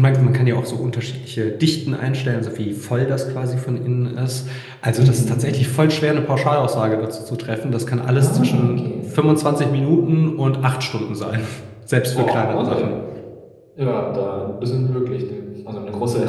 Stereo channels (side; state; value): both; identical; correlation 1.00